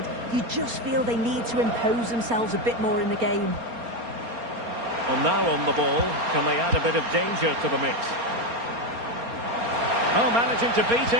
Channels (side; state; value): left; late; 4.3 ms